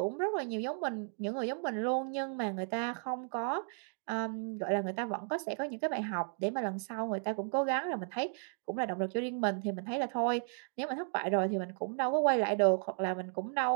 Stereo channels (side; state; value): left; silent; 55 dB below the other